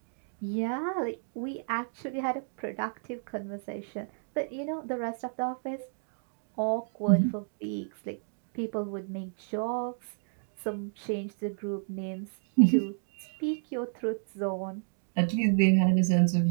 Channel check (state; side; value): silent; left; digital silence